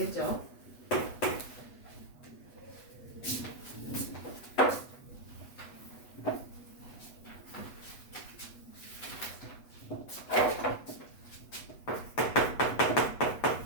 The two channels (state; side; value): late; right; 8.1 ms